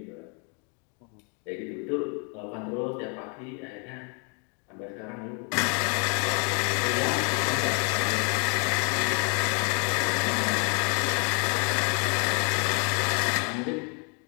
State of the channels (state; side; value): quieter; right; 38.1 dB